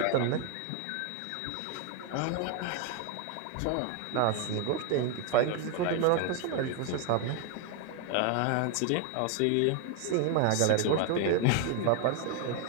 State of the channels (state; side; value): different; both; correlation 0.01